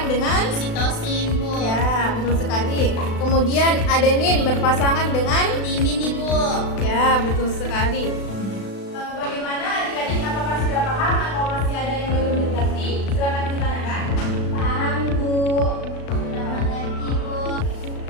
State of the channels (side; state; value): right; late; 36 ms